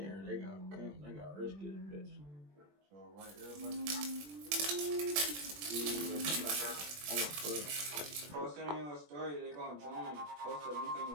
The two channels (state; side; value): late; left; 20 ms